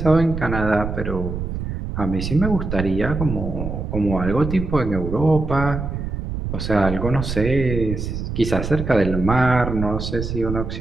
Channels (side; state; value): right; noise; rumble, 5 dB below the sound